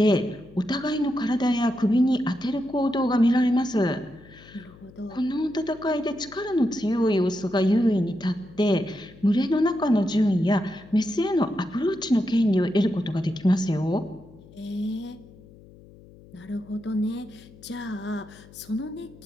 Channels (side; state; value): left; noise; hum, 22 dB below the sound